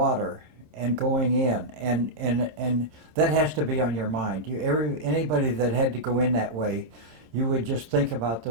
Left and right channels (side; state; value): left; late; 26 ms